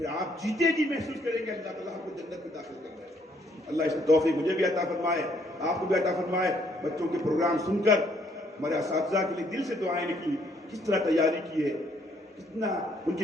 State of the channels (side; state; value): both; normal; correlation 0.67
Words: آپ جیتے جی محسوس کریں گے اللہ تعالیٰ آپ کو جنت میں داخل کر رہا ہے. اللہ اس توفیق مجھے بھی عطا فرمائے, آپ کو بھی عطا فرمائے. بچوں کے پروگرام سن کر ہمارے اساتذہ کے لیے دل سے دعائیں نکلی, کس طرح تیاری کی ہے, کتنا ان